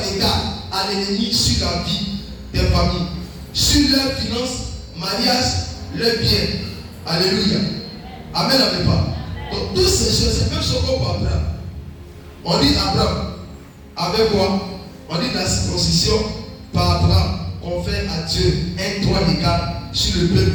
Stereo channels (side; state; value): both; identical; correlation 1.00